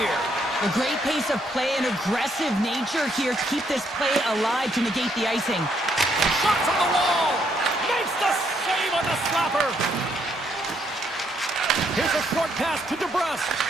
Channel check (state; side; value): normal; both; correlation 0.73